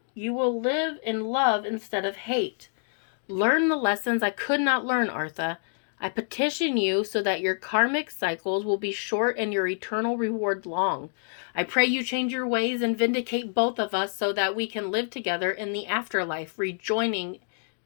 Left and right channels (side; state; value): right; silent; digital silence